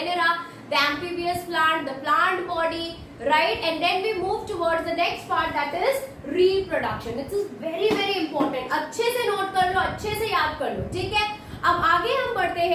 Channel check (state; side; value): identical; both; correlation 1.00